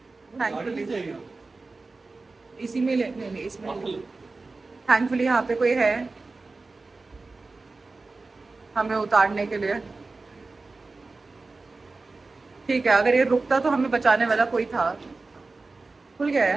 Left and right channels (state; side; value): quieter; left; 3.7 dB